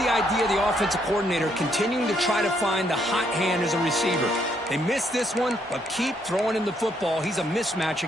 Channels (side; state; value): both; normal; correlation 0.72